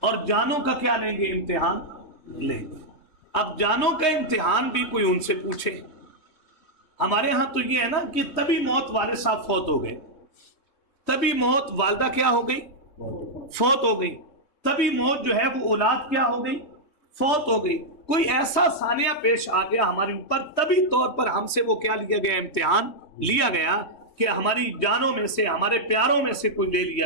اور جانوں کا کیا لیں گے، امتحان لیں گے. اب جانوں کا امتحان بھی کوئی ان سے پوچھے. ہمارے ہاں تو یہ ہے نا کہ تبھی موت والے صاحب فوت ہو گئے، تبھی موت والدہ کیا ہو گئی، فوت ہو گئی، تبھی موت جو ہے وہ اولاد کیا ہو گئی، فوت ہو گئی. کوئی ایسا ثانیہ پیش آ گیا ہمارے اوپر، طبی طور پر ہم سے وہ کیا لیا گیا، امتحان لیا گیا کہ ہماری جانوں میں سے، ہمارے پیاروں میں سے کوئی لے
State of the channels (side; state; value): right; late; 3.2 ms